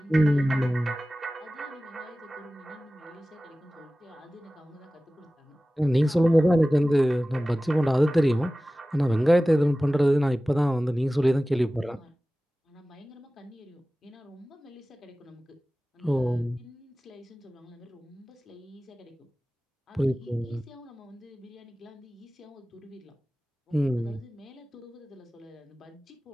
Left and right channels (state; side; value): normal; both; correlation 0.97